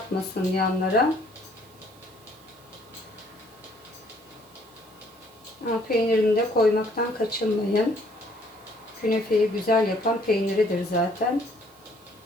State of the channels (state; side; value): noise; right; hiss, 28 dB below the sound